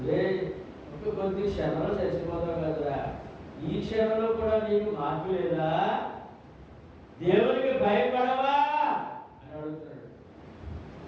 రే కొద్ది క్షణంలో చచ్చిపోతావు కదరా, ఈ క్షణంలో కూడా నీకు మార్పు లేదా, దేవునికి భయపడవా అని అడుగుతున్నాడు.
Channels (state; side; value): identical; both; correlation 1.00